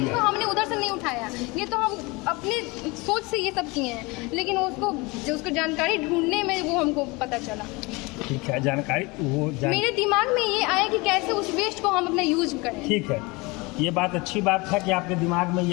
को हमने उधर से नहीं उठाया, ये तो हम अपने सोच से ये सब किए हैं, लेकिन उसको जानकारी ढूंढने में वो हमको पता चला। ठीक है, जानकारी मेरे दिमाग में ये आया कि कैसे उस वेस्ट को हम अपना यूज करें। ठीक है, ये बात अच्छी बात है कि आपके दिमाग में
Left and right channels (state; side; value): quieter; right; 25.2 dB